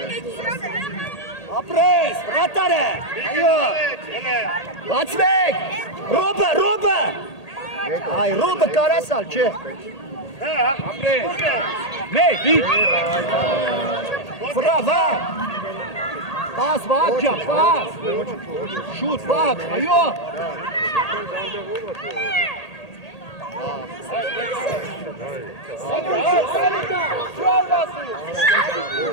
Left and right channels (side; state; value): right; late; 1.8 ms